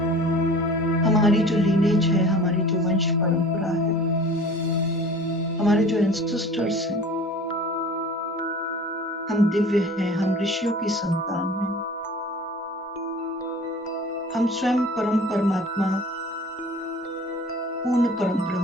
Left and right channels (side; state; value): both; normal; correlation 0.43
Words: हमारी जो लीनेज है, हमारी जो वंश परंपरा है, हमारे जो एंसेस्टर्स हैं, हम दिव्य हैं, हम ऋषियों की संतान हैं, हम स्वयं परम परमात्मा, पूर्ण परम